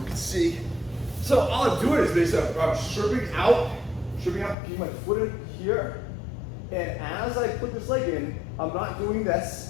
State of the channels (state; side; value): drops out; right; at 4.5 s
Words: can see. So all I'm doing is basically I'm stripping out, keep my foot in here. And as I put this leg in, I'm not doing